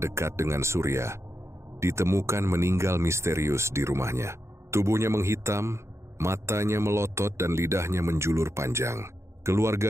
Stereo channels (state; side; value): late; left; 0.13 ms